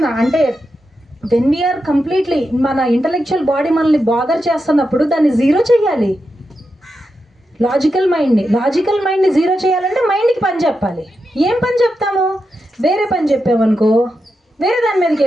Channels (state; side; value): normal; both; correlation 0.87